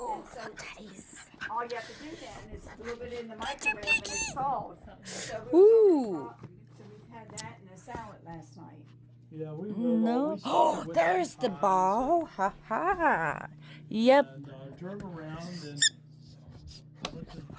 And so Teddies. all you have to do then is a little bit in the microwave and it's thawed. So Ooh. so we've had that in a salad last night. Yeah, we will. No. We started Oh, with there's the pies. ball. Ha ha. Yep. And turn around and went to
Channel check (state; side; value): identical; both; correlation 1.00